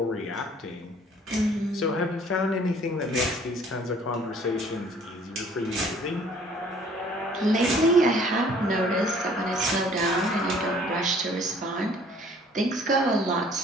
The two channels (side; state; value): both; normal; correlation 0.56